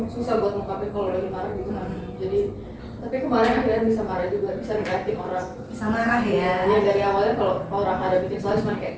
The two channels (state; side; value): identical; both; correlation 1.00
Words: susah buat ngungkapin kalau lagi marah gitu kan. Jadi tapi kemarin akhirnya bisa marah juga, bisa ngeliatin orang. Bisa marah ya? Ya dari awalnya kalau orang ada bikin salah cuma